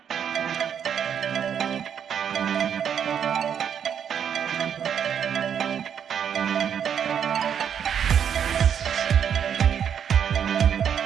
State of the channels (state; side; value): quieter; left; 8.3 dB